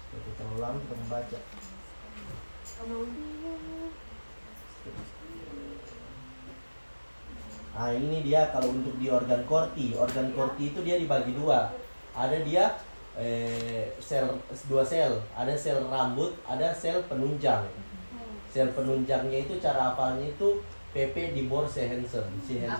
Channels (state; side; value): inverted; both; correlation -1.00